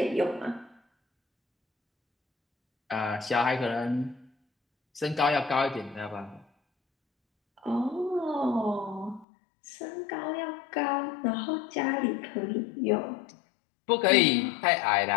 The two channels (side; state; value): right; drops out; at 9.2 s